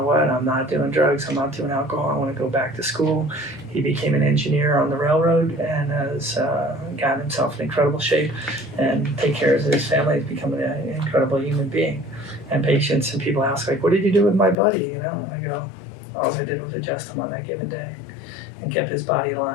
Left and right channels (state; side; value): drops out; right; at 14.6 s